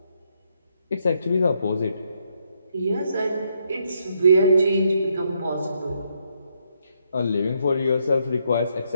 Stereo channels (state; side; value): inverted; both; correlation -0.75